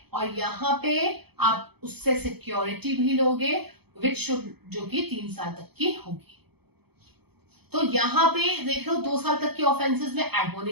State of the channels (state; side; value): late; left; 0.97 ms